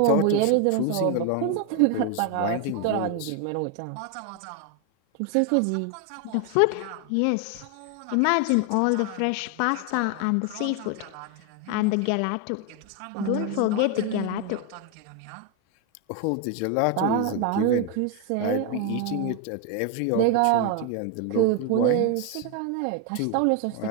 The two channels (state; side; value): different; both; correlation 0.01